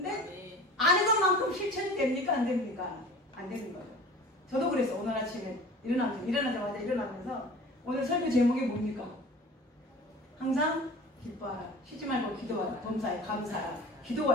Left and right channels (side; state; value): both; normal; correlation 0.41